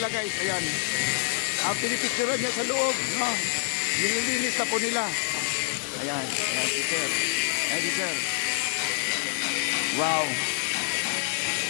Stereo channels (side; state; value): right; silent; digital silence